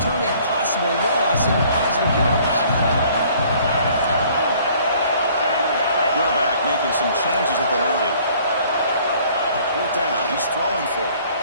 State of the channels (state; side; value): inverted; both; correlation -0.57